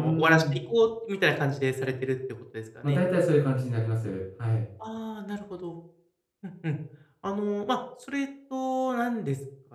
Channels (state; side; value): identical; both; correlation 1.00